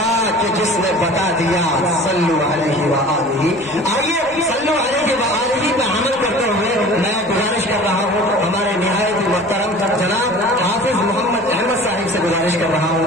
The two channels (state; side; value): normal; both; correlation 0.42